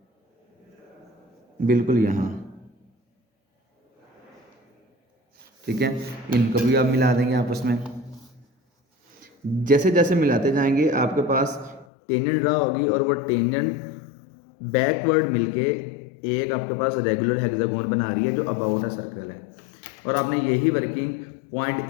बिल्कुल यहाँ, ठीक है। इनको भी आप मिला देंगे आपस में। जैसे जैसे मिलाते जाएंगे आपके पास टेंजेंट ड्रा होगी और वो टेंजेंट बैकवर्ड मिलके एक आपके पास रेगुलर हेक्सागोन बना रही है जो अबाउट अ सर्कल है। और आपने यही वर्किंग पॉइंट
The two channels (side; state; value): right; drops out; at 11.9 s